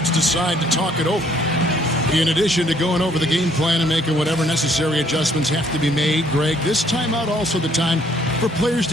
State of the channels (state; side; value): normal; both; correlation 0.64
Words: decide to talk it over. In addition to going over the game plan and making whatever necessary adjustments have to be made, Greg, this timeout also the time for players